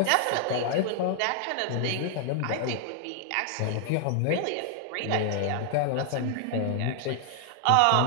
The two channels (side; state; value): both; different; correlation 0.00